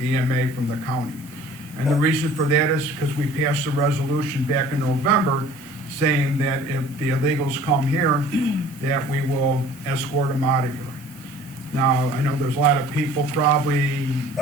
EMA from the county. And the reason for that is because we passed a resolution back in November saying that if the illegals come here, that we will escort them out of here. Now, I know there's a lot of people probably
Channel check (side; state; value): both; normal; correlation 0.49